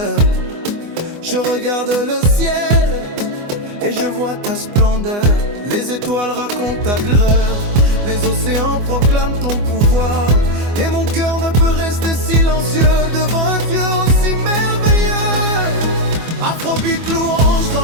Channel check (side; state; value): left; late; 24 ms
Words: Je regarde le ciel et je vois ta splendeur. Les étoiles racontent ta gloire, les océans proclament ton pouvoir. Et mon cœur ne peut rester silencieux devant un Dieu aussi merveilleux. Afrobeat louange